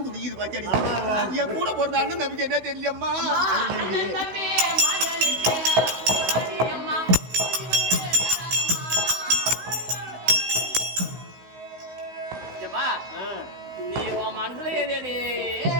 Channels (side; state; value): left; late; 16 ms